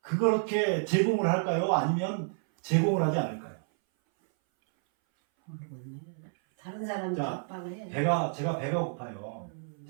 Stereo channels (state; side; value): silent; left; 58 dB below the other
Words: 그렇게 제공을 할까요? 아니면 제공을 하지 않을까요? 모르겠네. 다른 사람이 자, 압박을 해. 제가 배가 고파요.